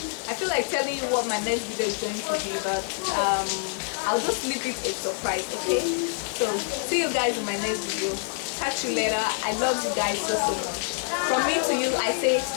I feel like telling you what my next video is going to be, but I'll just leave it a surprise. Okay, so see you guys in my next video. Catch you later. I love you guys so much. From me to you, I say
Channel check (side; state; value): right; silent; 59 dB below the other